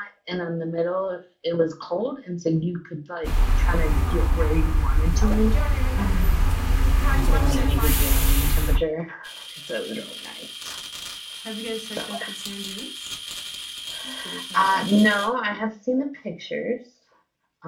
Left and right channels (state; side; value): identical; both; correlation 1.00